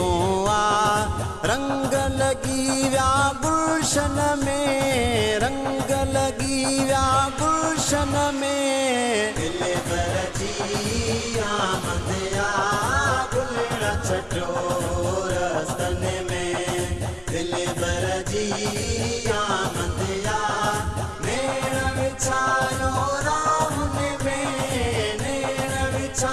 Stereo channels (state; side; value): identical; both; correlation 1.00